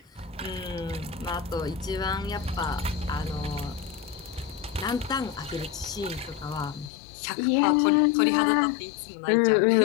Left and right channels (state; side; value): drops out; right; at 6.9 s